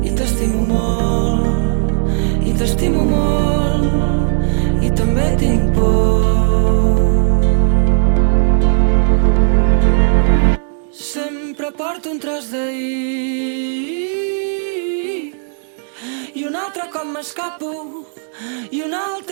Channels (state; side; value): silent; left; digital silence